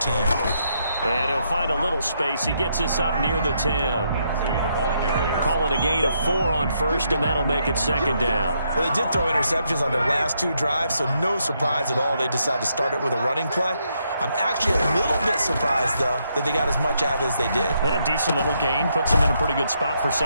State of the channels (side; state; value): both; inverted; correlation -0.77